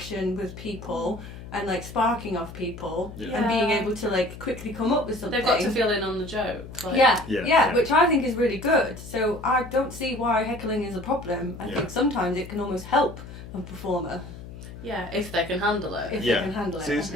with people and like sparking off people and being able to like quickly come up with something. They've got to feel in on the joke. Like. Yeah, which I think is really good. So I don't see why heckling is a problem. I think sometimes it can almost help a performer. Yeah, if they can handle it. If they can handle it. See, it's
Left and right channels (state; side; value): noise; left; hum, 13 dB below the sound